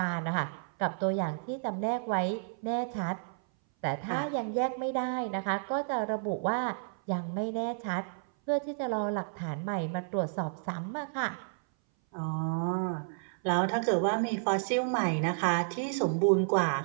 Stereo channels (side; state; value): left; silent; 57 dB below the other